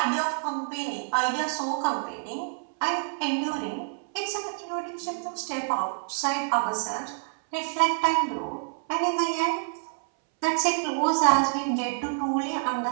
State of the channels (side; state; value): left; silent; 60 dB below the other